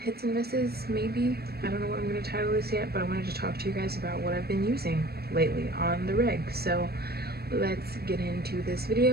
hits and misses maybe. I don't know what I'm going to title this yet, but I wanted to talk to you guys about what I've been using lately on the reg. So let's get into this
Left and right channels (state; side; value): late; left; 0.46 ms